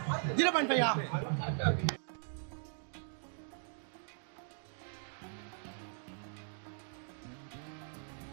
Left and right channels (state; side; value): silent; left; digital silence